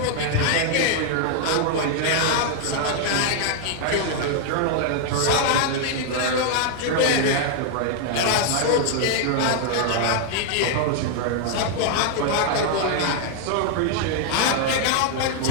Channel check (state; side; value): different; both; correlation 0.00